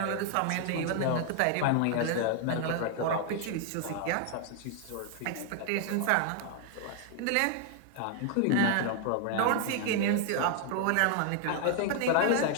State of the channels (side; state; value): both; different; correlation 0.00